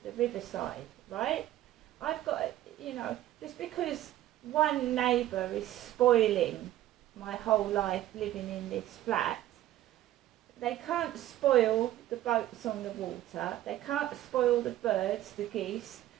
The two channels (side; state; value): left; quieter; 13.8 dB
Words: the riverside, right? I've got, you know, just because one neighbour is spoiling my whole life living in this flat, they can't spoil the boats on the water, they can't spoil the birds, the geese,